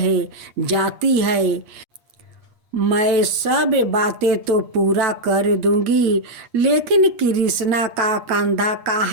जाती है। मैं सब बातें तो पूरा कर दूंगी, लेकिन कृष्णा का कंधा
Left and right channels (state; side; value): late; left; 8.5 ms